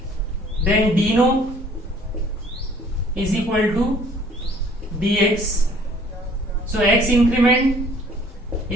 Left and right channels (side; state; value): both; normal; correlation 0.56